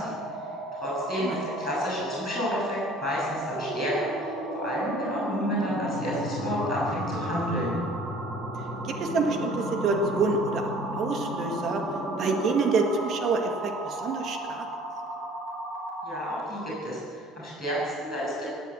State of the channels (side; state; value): both; normal; correlation 0.51